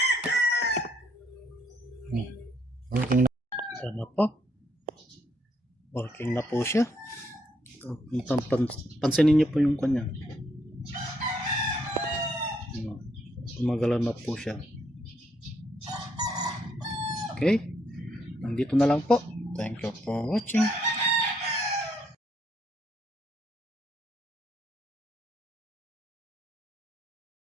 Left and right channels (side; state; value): both; normal; correlation 0.72